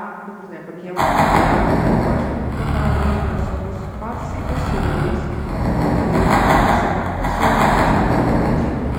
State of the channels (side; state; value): both; identical; correlation 1.00